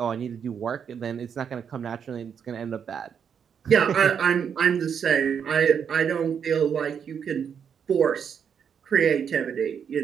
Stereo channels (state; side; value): quieter; left; 7.4 dB